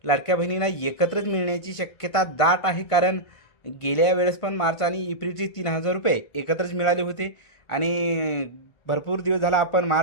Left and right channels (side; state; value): right; late; 1.5 ms